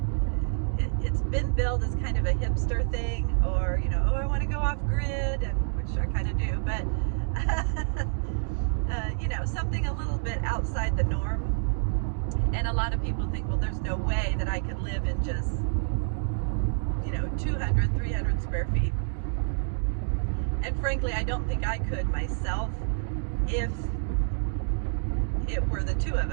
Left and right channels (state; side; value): silent; left; digital silence